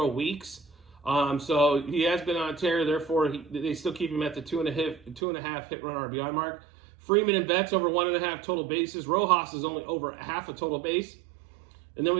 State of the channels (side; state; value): left; drops out; at 5.2 s